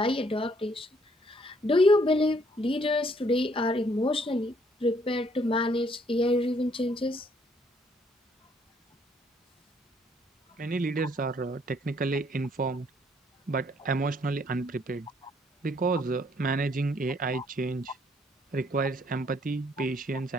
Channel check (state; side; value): normal; both; correlation 0.66